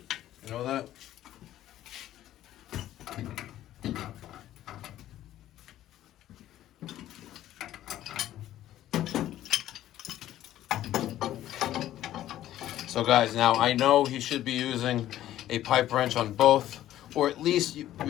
You know that? So guys, now I know he should be using a pipe wrench on both, or at least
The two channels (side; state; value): right; quieter; 13.1 dB